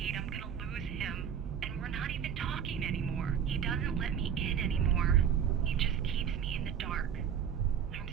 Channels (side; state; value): left; quieter; 8.4 dB